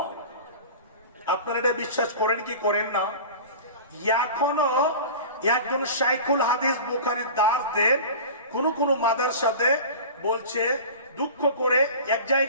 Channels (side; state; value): both; inverted; correlation -0.35